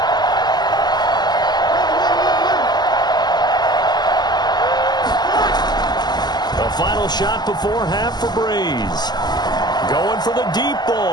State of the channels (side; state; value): right; late; 0.20 ms